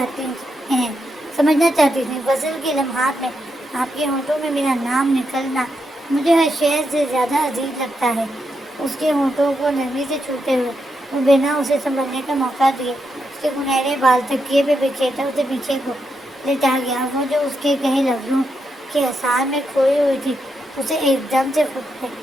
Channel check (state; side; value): normal; both; correlation 0.83